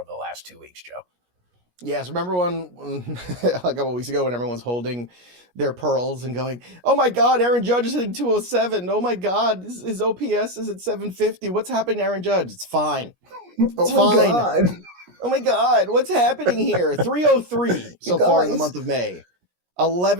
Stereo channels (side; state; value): left; late; 17 ms